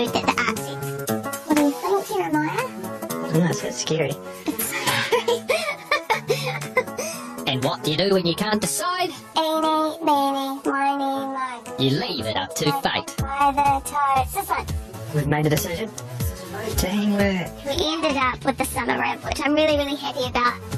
that the art sets. What do you think, Jeremiah? Oh, that's a bit scary. And what do you do when you can't decide? Eeny, meeny, miny, mo. You leave it up to fate. By the toes. This one. We've made a decision. Teamwork. We ended up with the summer rib, which I'm really, really happy about.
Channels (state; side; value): identical; both; correlation 1.00